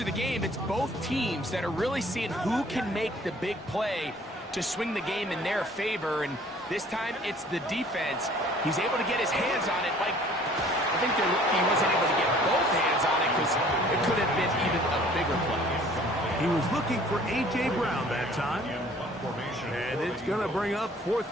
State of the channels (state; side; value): normal; both; correlation 0.54